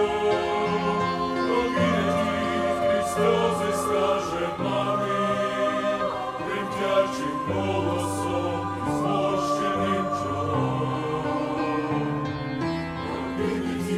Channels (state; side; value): identical; both; correlation 1.00